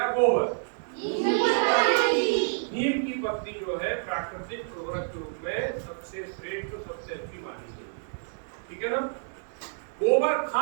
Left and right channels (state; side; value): silent; left; digital silence